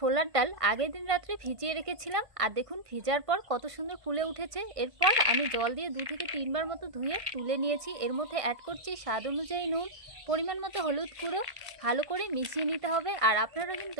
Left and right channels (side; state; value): left; late; 1.5 ms